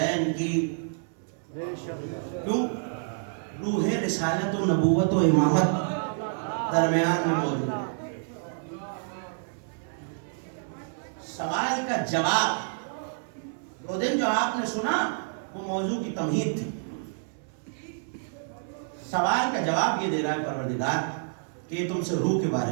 کی, کیوں؟ روح رسالت و نبوت و امامت درمیان میں موجود ہے. سوال کا جواب وہ دن جو آپ نے سنا وہ موضوع کی تمہید تھی. سوال کا جواب یہ دے رہا ہے پروردگار کہ یہ تم سے روح کے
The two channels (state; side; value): silent; left; 59 dB below the other